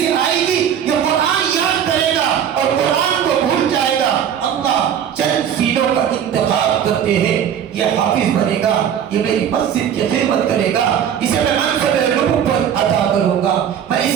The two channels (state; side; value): quieter; left; 9.0 dB